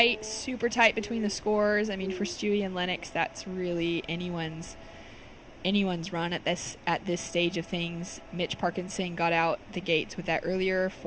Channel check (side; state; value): both; identical; correlation 1.00